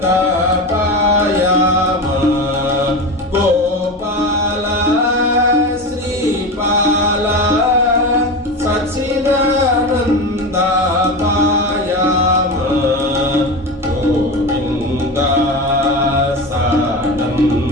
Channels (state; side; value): normal; both; correlation 0.23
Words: पायाम गोपाल श्रीपाल सच्चिदानन्द पायाम गोविन्द